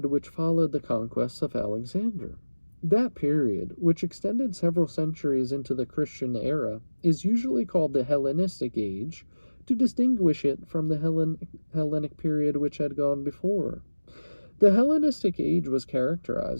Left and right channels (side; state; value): both; inverted; correlation -1.00